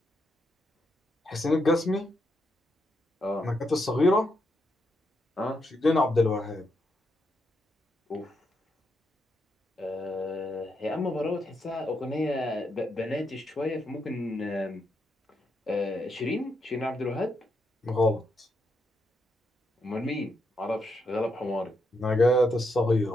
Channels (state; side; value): normal; both; correlation 0.81